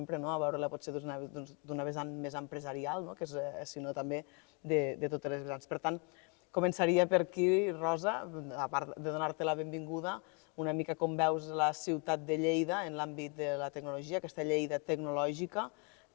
a veure-la potser d'una vessant més empresarial, sinó també de totes les vessants. Per tant, començaria per aquí, Rosa, a part de donar-te la benvinguda, una mica com veus la ciutat de Lleida en l'àmbit de la tecnologia, aquesta Lleida tecnològica.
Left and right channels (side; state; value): right; quieter; 34.9 dB